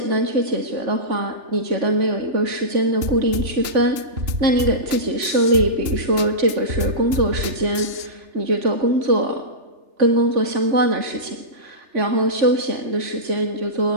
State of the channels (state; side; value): late; left; 3.3 ms